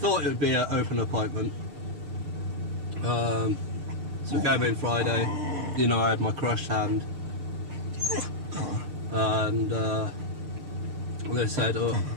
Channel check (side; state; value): left; late; 6.6 ms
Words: it would be an open appointment. So came in Friday. You know, I had my crushed hand, and they said, "Oh,